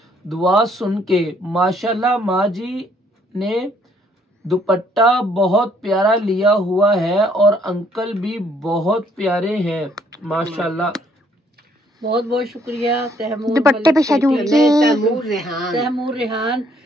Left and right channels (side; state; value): both; normal; correlation 0.66